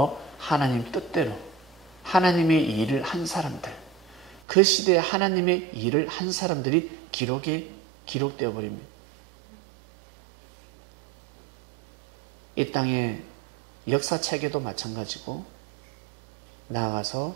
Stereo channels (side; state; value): left; drops out; at 4.4 s